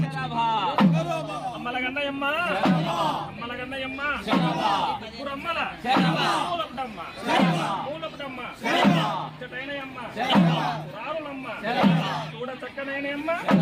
అమ్మలగన్నయమ్మ అమ్మలగన్నయమ్మ ముగ్గురమ్మల మూలపుటమ్మ మూలపుటమ్మ చటైనయమ్మ రారులమ్మ చూడ చక్కనైనయమ్మ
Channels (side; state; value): both; identical; correlation 1.00